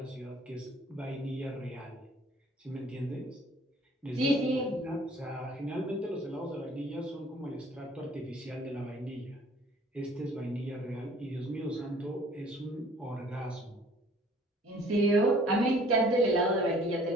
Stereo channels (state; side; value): normal; both; correlation 0.54